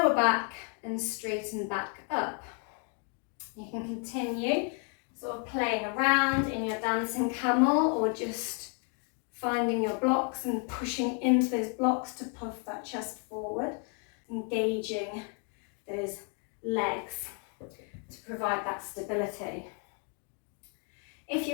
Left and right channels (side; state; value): right; quieter; 39.8 dB